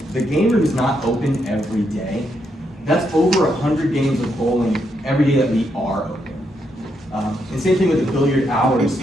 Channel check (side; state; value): both; normal; correlation 0.79